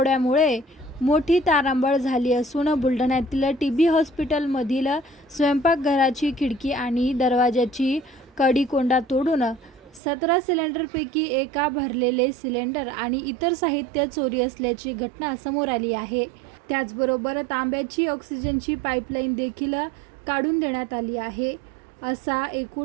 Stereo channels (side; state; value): left; drops out; at 10.0 s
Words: मोठी तारांबळ झाली असून बुलढाण्यातील टीबी हॉस्पिटलमधील स्वयंपाकघराची खिडकी आणि दरवाजाची कडी-कोंडा तोडून 17 सिलेंडरपैकी एका भरलेले सिलेंडर आणि इतर साहित्य चोरी असल्याची घटना समोर आली आहे। त्याचबरोबर तांब्याची ऑक्सिजनची पाईपलाईन देखील काढून देण्यात आली आहे। असा